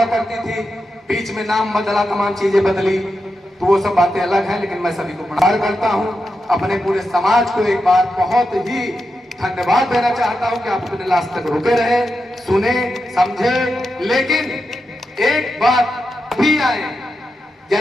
करती थी। बीच में नाम बदला, तमाम चीजें बदली, तो वो सब बातें अलग हैं, लेकिन मैं सभी को प्रणाम करता हूँ। अपने पूरे समाज को एक बार बहुत ही धन्यवाद देना चाहता हूँ कि आप अपने लास्ट तक रुके रहे, सुने, समझे। लेकिन एक बात भी आए,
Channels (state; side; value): normal; both; correlation 0.88